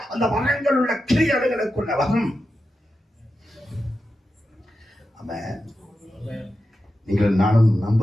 அந்த வளங்கள் உள்ள கிரியைகளுக்குள்ள வரும். ஆமென். நீங்கள் நானும்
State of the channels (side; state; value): both; normal; correlation 0.90